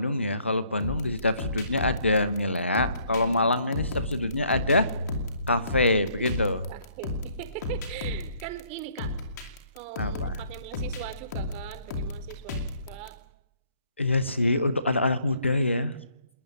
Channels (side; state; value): both; inverted; correlation -0.65